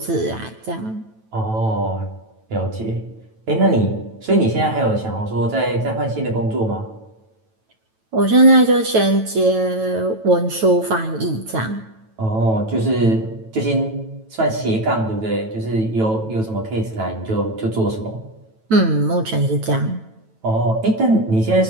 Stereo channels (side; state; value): left; late; 9.1 ms